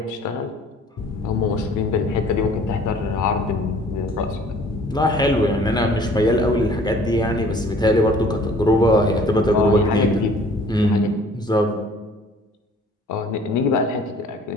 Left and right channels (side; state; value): both; normal; correlation 0.53